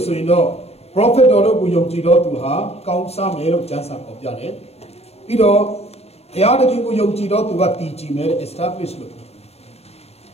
yin do prophet တော်တို့ကိုယုံကြည်တော်သူဟာကောင်းစားမယ်လို့ကျမ်းစာဖော်ပြတယ်ပြီးတော့ဘုရားသခင်ကိုယုံကြည်တော်သူကတည်ကြည်မယ် establish လို့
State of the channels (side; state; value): right; late; 0.30 ms